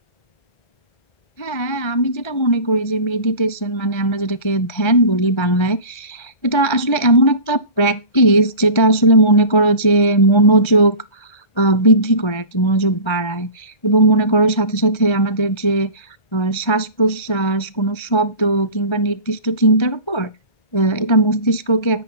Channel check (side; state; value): right; late; 1.3 ms